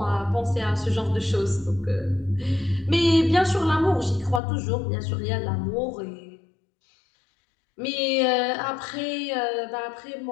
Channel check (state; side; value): drops out; right; at 4.4 s